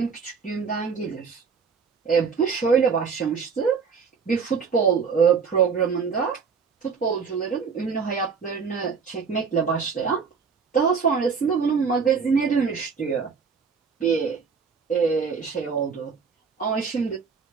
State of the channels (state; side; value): quieter; left; 5.7 dB